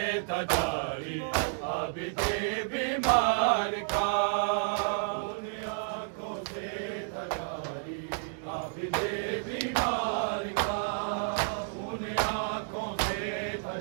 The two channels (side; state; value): left; silent; digital silence